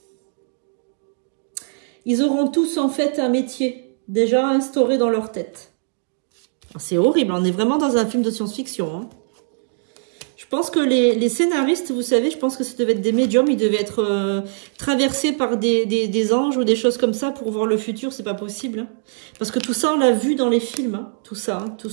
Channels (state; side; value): silent; left; digital silence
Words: ils auront tous en fait un métier déjà instauré dans leur tête. C'est horrible, on est vraiment dans un film de science-fiction, hein. Je pense que les scénaristes, vous savez, je pense que ça devait être des médiums, ils devaient être traversés par des anges ou des choses comme ça pour voir le futur, c'est pas possible, hein. Parce que tout ça, on l'a vu dans les films, hein, tout ça, hein, tout